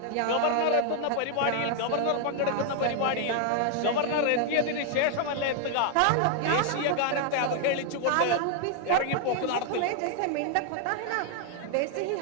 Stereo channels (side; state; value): both; different; correlation 0.00